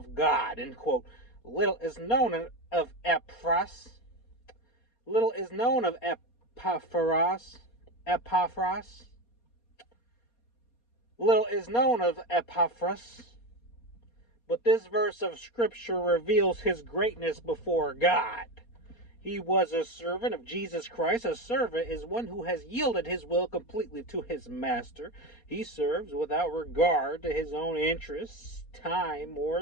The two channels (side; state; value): right; late; 4.2 ms